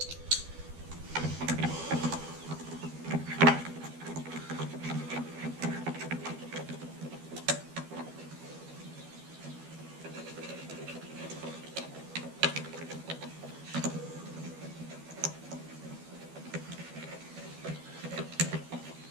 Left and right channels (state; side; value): late; left; 12 ms